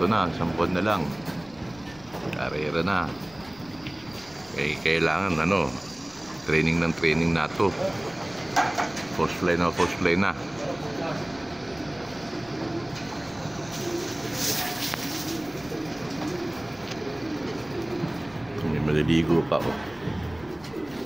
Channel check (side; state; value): left; noise; rumble, 23 dB below the sound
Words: na, 10 na lang. Karera na. Kailangan training na to. Post play na. May maliligo pa